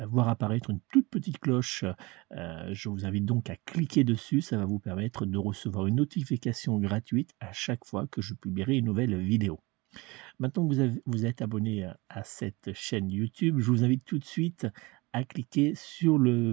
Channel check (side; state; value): left; quieter; 24.0 dB